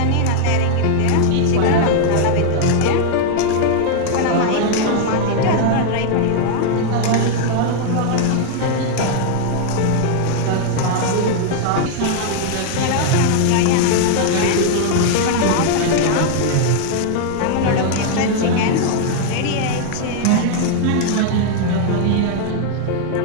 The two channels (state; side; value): different; both; correlation 0.00